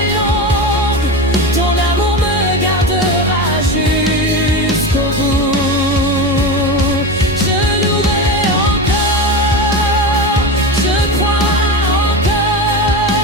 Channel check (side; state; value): both; normal; correlation 0.23